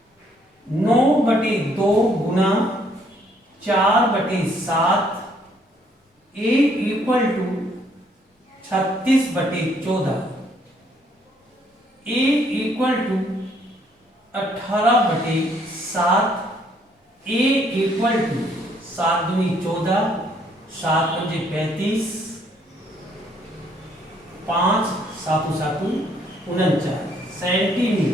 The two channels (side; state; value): both; normal; correlation 0.66